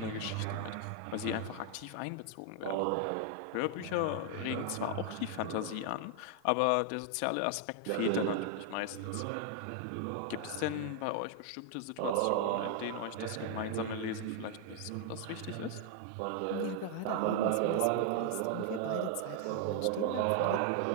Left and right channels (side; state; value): both; different; correlation 0.00